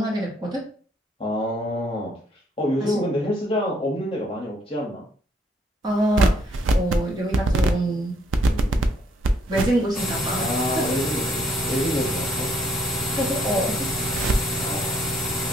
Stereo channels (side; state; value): both; normal; correlation 0.68